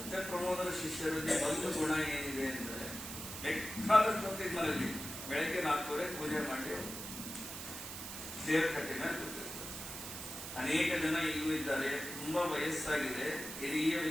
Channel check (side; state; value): right; noise; hiss, 8 dB below the sound